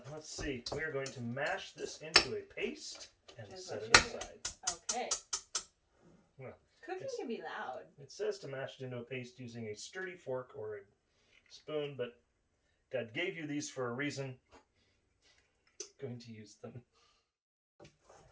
see. We are going to mash this into a paste and set it aside. Okay. Well, cooking can be loud. It says to mash it into a paste using a sturdy fork or a spoon, but God gave you these for a reason. I'm going to use them.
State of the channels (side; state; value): both; identical; correlation 1.00